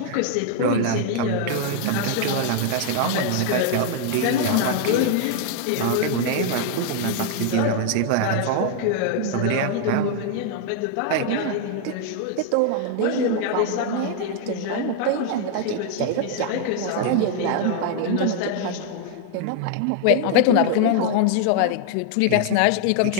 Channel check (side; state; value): both; different; correlation 0.00